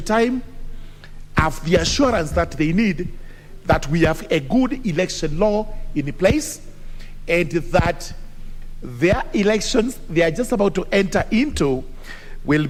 time have the assurance that they need that we have a good election law in place and that their elections they are just about to enter into will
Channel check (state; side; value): identical; both; correlation 1.00